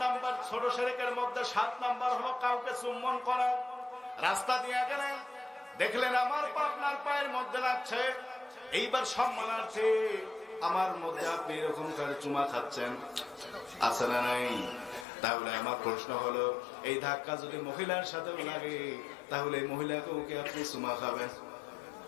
নাম্বার, ছোট শিরকের মধ্যে 7 নাম্বার হলো কাউকে চুম্বন করা। রাস্তা দিয়ে গেলেন, দেখলেন আমার পা আপনার পায়ের মধ্যে লাগছে, এইবার সম্মানার্থে আমার মধ্যে আপনি এরকম করে চুমা খাচ্ছেন, আছে না নাই? তাহলে আমার প্রশ্ন হলো, এই ধাক্কা যদি মহিলার সাথে লাগে তাহলে এই মহিলাকেও কি আপনি চুমা খাবেন?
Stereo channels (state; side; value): drops out; right; at 15.1 s